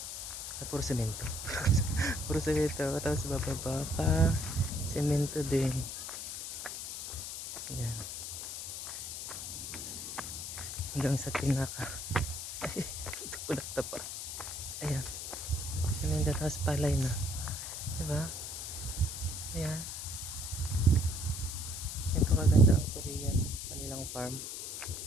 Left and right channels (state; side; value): noise; left; hiss, 6 dB below the sound